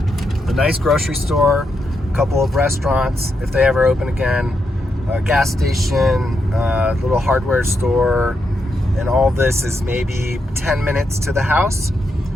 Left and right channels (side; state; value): both; normal; correlation 0.82